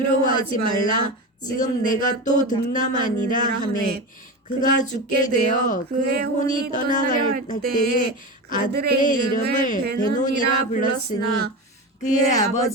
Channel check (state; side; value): normal; both; correlation 0.23